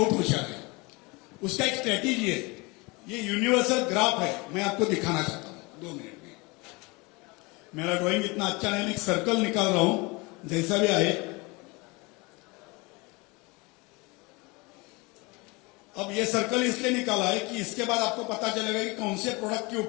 होशियार है, उसका एक स्ट्रेटेजी है। ये यूनिवर्सल ग्राफ है, मैं आपको दिखाना चाहता हूं 2 मिनट में। मेरा ड्राइंग इतना अच्छा नहीं, मैं एक सर्कल निकाल रहा हूं जैसा भी आए। अब ये सर्कल इसलिए निकाला है कि इसके बाद आपको पता चलेगा कि कौन से प्रोडक्ट के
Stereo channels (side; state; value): right; quieter; 26.2 dB